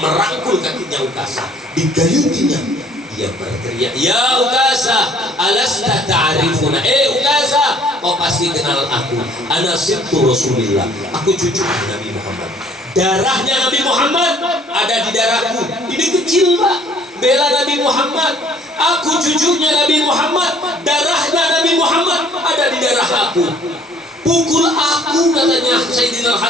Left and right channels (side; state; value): both; normal; correlation 0.58